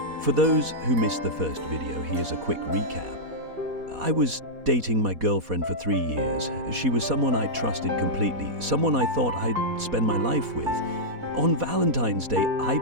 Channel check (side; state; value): left; late; 4.1 ms